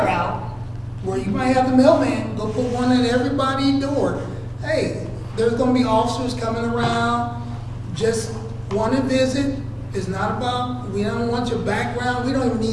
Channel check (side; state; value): both; identical; correlation 1.00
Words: out where you might have the mailman go put one at everybody's door. Hey, there's gonna be officers coming around, just want to visit. It's not about, we don't want your background, we don't even